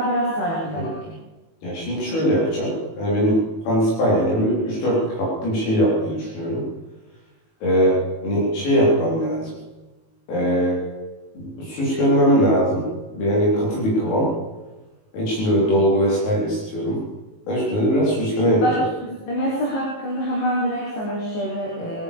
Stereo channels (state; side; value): late; right; 19 ms